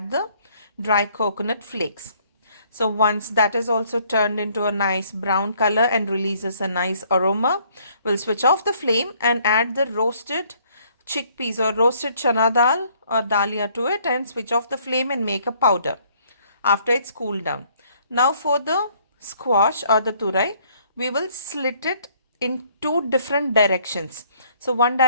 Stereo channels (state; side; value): inverted; both; correlation -0.64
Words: the dry coconut flakes. So once that is also turned into a nice brown color and releases a nice aroma, we'll switch off the flame and add the roasted chickpeas or roasted chana dal or dalia to it, and switch off the flame and make a powder after it's cooled down. Now for the squash or the turai, we will slit it in 2 different directions. So one